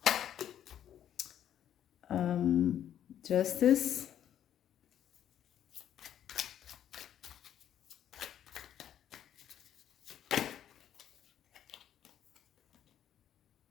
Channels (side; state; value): right; quieter; 10.4 dB